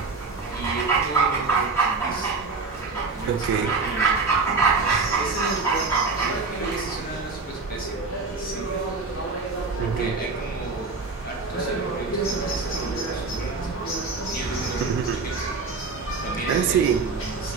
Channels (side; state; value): left; quieter; 4.2 dB